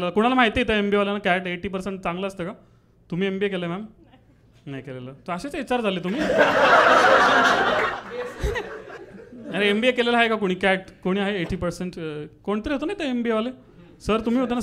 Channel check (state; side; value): identical; both; correlation 1.00